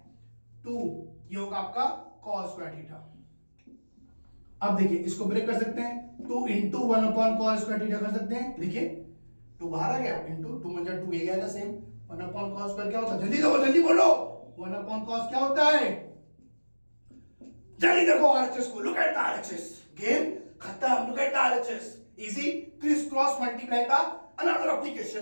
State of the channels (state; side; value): inverted; both; correlation -1.00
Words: 2, ये होगा आपका cos स्क्वायर थीटा। अब देखिए इसको ब्रेक कर सकते हैं, 2 into 1 upon cos square theta कर सकते हैं, देखिए 2 बाहर आ गया, इंटू 2 में 2 ये आएगा सेम, 1 अपॉन cos स्क्वायर क्या होता है, जल्दी बोलो 1 अपॉन cos क्या होता है, जल्दी देखो आरएचएस को, look at the RHS, game खत्म, look at the RHS, easy criss cross multiply का अनदर एप्लीकेशन,